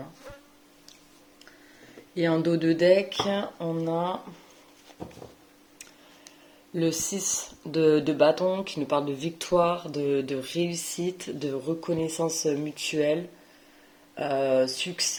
hein. Et en dos de deck, on a le 6 de bâton qui nous parle de victoire, de réussite, de reconnaissance mutuelle,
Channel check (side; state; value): both; identical; correlation 1.00